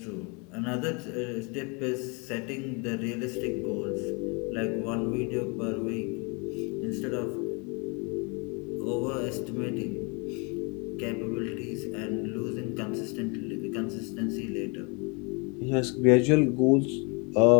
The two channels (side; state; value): right; quieter; 31.7 dB